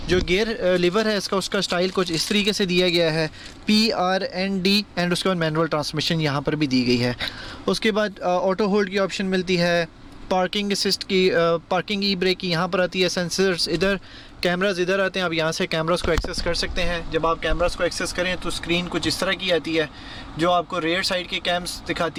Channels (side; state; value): both; identical; correlation 1.00